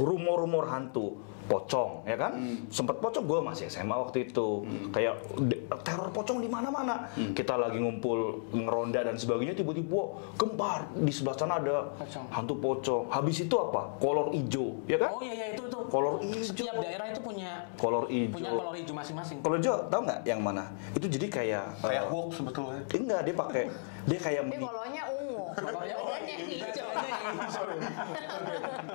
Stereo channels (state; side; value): silent; right; digital silence